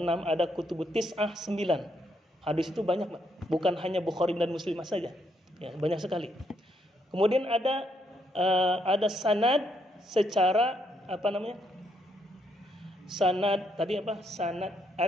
6 ada kutubus tis'ah 9. Hadis itu banyak, Pak. Bukan hanya Bukhari dan Muslim saja. Ya, banyak sekali. Kemudian ada sanad secara sanad tadi apa? Sanad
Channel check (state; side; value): normal; both; correlation 0.75